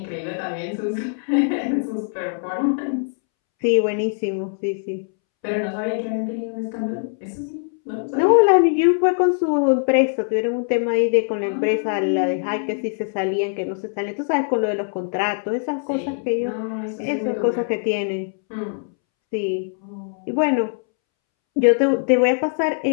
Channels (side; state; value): right; silent; 64 dB below the other